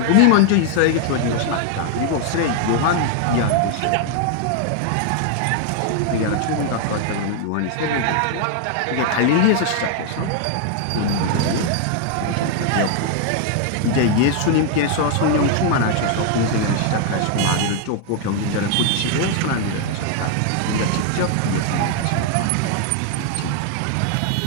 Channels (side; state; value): both; different; correlation 0.00